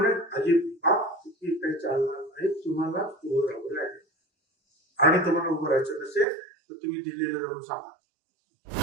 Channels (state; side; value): drops out; left; at 6.2 s